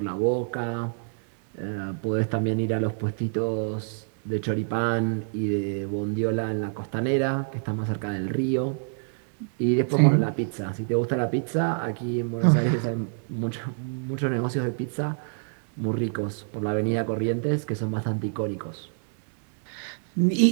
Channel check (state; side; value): silent; left; digital silence